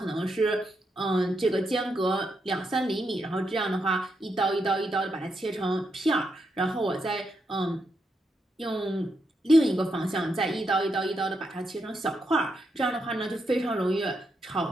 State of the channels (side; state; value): both; normal; correlation 0.82